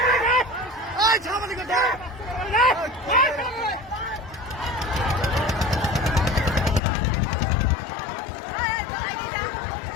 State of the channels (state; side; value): drops out; right; at 6.8 s